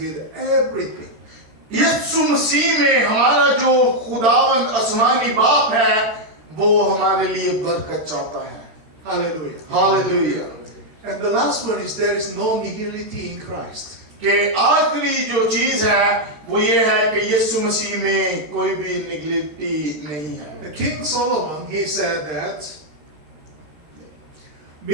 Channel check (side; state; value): left; late; 13 ms